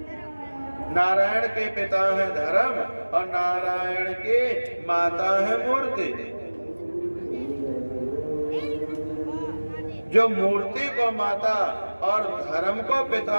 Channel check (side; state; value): both; inverted; correlation -1.00